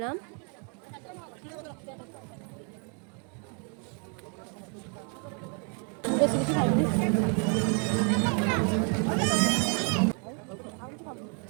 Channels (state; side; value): quieter; left; 38.1 dB